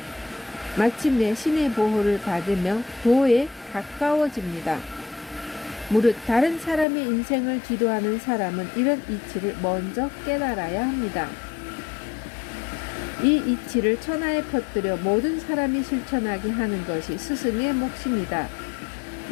마침내 신의 보호를 받으며 도에 가까워집니다. 무릇 다른 사람의 인생을 지도하는 사람은 이런 이치를 먼저 깨달아야 합니다. 이 이치를 천하에 퍼뜨려 모든 사람이 실천하게 하는 것이 스승의 몫입니다.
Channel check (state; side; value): drops out; right; at 6.9 s